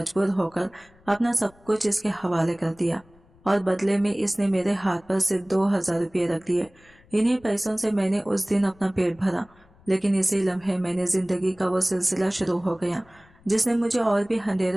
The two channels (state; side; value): noise; left; rumble, 28 dB below the sound